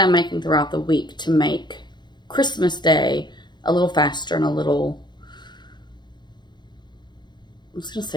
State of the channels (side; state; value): right; late; 0.21 ms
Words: I'm making throughout the week to make Christmas Day a little faster and a little, I was going to